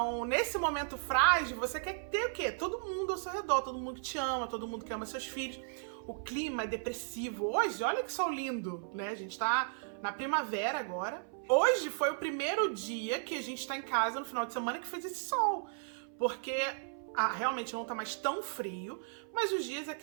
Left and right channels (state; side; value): silent; left; 54 dB below the other